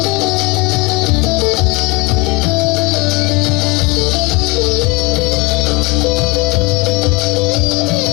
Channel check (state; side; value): quieter; right; 24.8 dB